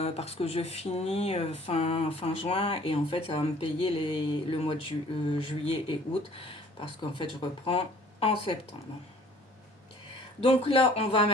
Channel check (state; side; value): normal; both; correlation 0.53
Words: que je finis fin juin. Et en fait, ça va me payer le mois de juillet et août. Parce qu'en fait, je reprends en septembre. Donc là, on va